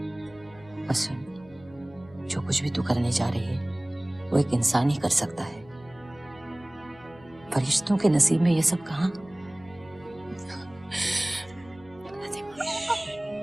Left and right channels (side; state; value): left; noise; hum, 23 dB below the sound